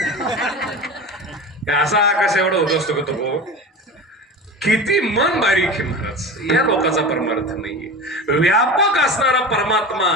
असा आकाश एवढा होत असतो का तो, किती मन बारीक आहे महाराज. या लोकांचा परमार्थ नाहीये. व्यापक असणारा परमात्मा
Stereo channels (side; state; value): both; normal; correlation 0.30